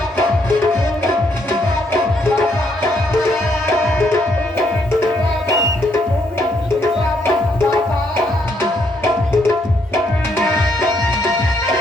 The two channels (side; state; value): both; normal; correlation 0.72